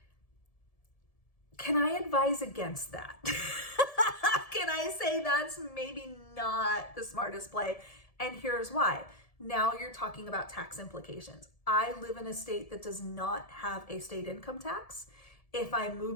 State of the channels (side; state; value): right; late; 1.7 ms